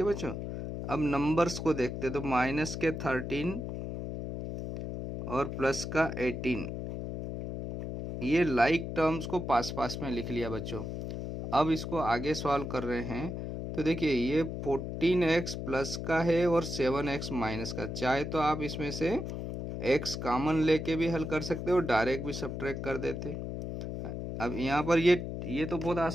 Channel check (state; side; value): noise; left; hum, 5 dB below the sound